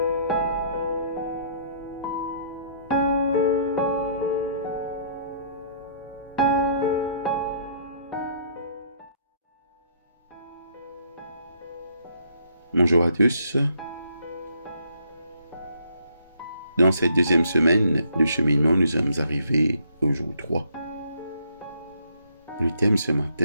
Bonjour à tous. Dans cette deuxième semaine de cheminement, nous sommes arrivés au jour 3. Le thème ce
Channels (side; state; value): both; inverted; correlation -0.66